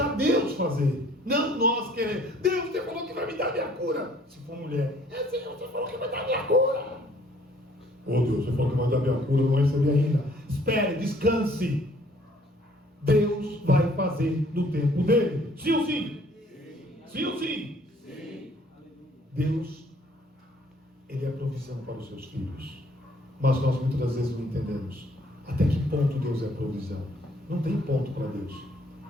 Deus fazer. Não nós queremos. Deus, você falou que vai me dar minha cura. Se for mulher, Senhor, você falou que vai dar minha cura. Deus, você falou que vai dar minha cura, eu não recebi ainda. Espere, descanse. Deus vai fazer no tempo dele. Sim ou sim? Sim ou sim? Sim. Deus, Ele é a provisão para os seus filhos. Mas nós muitas vezes não entendemos até que ponto Deus é a provisão. Não tem ponto para Deus.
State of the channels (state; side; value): normal; both; correlation 0.59